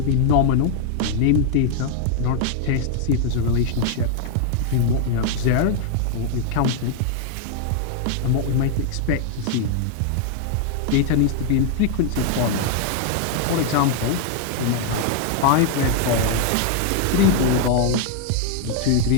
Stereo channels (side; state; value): both; different; correlation 0.00